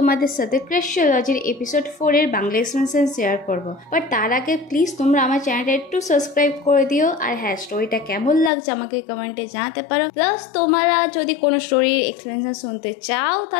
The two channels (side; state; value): right; drops out; at 8.5 s